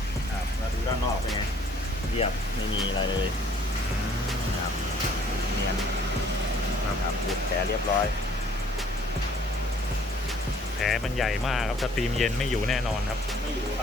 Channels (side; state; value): both; normal; correlation 0.59